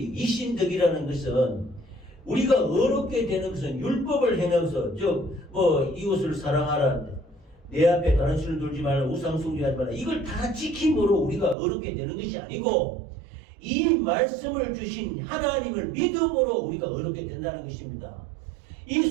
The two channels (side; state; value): left; drops out; at 11.6 s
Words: 이신덕이라는 것은 우리가 어렵게 되는 것은 율법을 행하면서 즉 이웃을 사랑하라, 내 앞에 다른 신을 두지 말라, 우상 숭배하지 말라, 이걸 다 지킴으로 우리가 어렵게 되는 것이 아니고 이 말씀을 주신 하나님을 믿음으로 우리가 어렵게 된다는 것입니다. 이